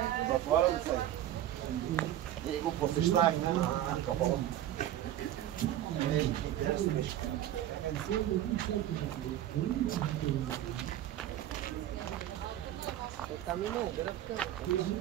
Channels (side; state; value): left; quieter; 12.4 dB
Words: Затворен се. И го посещавахме на Кабала. Интересно нещо.